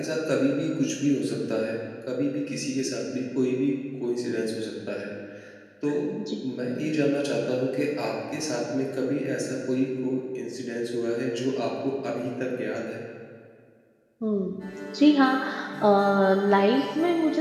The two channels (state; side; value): identical; both; correlation 1.00